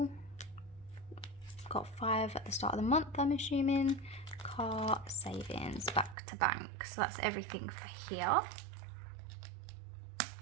Got 5 at the start of the month, I'm assuming. Car, savings, back to bank. So that's everything for here.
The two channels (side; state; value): left; drops out; at 6.2 s